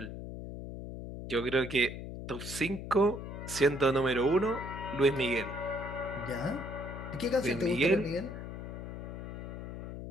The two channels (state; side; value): noise; left; hum, 8 dB below the sound